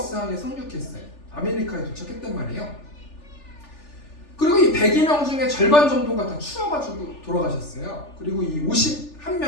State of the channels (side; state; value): right; late; 3.4 ms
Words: 항에 상륙했어요. 아메리카에 도착했단 말이에요. 그리고 이 102명 중에 절반 정도가 다 추워가지고 돌아가셨어요. 그리고 이